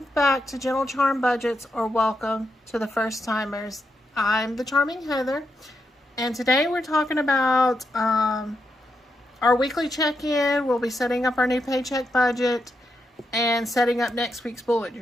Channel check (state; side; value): normal; both; correlation 0.84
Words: back to Gentle Charm Budgets, or welcome to the first timers. I'm the Charming Heather, and today we're talking about our weekly check-in. We'll be setting up our new paycheck budget and setting up next week's bullet